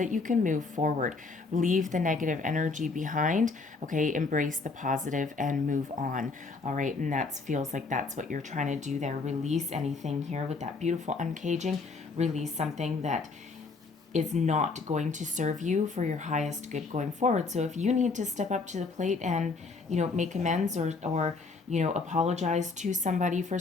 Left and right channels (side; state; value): right; quieter; 4.2 dB